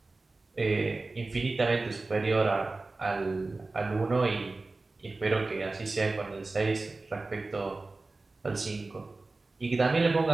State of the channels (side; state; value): left; quieter; 3.4 dB